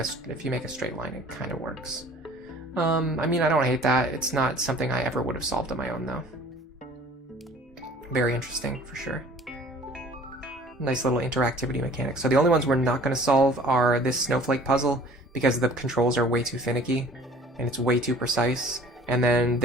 straight line, it kind of works. I mean, I don't hate that. It's not something I ever would have solved on my own, though. Very interesting, for sure. Nice little interactivity mechanic. So the only ones we're not going to solve are this snowflake puzzle, because the controls are way too finicky, and it's way too precise. And then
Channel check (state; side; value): normal; both; correlation 0.49